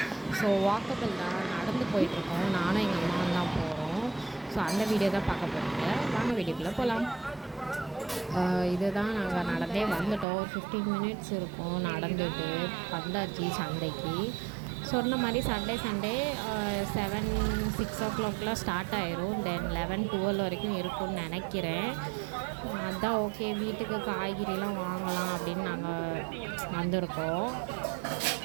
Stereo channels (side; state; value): left; drops out; at 10.2 s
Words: ஸோ வாக்கபிள் தான், நடந்து போயிட்டுருக்கோம். நானும் எங்கள் அம்மாவும் தான் போகிறோம். ஸோ அந்த வீடியோ தான் பார்க்க போகிறீங்க. வாங்க வீடியோக்குள்ளே போகலாம். இதுதான் நாங்கள் நடந்தே வந்துட்டோம். ஒரு 15 மினிட்ஸ் இருக்கும் நடந்துட்டு வந்தாச்சு சந்தைக்கு. சொன்ன மாதிரி சண்டே 7-6 ஸ்டார்ட் ஆயிரும். தென் 11-12 வரைக்கும் இருக்கும்னு நினைக்கிறேன். அதுதான் ஓகே, வீட்டுக்கு காய்கறிலாம் வாங்கலாம் அப்படின்னு நாங்கள் வந்திருக்கோம்.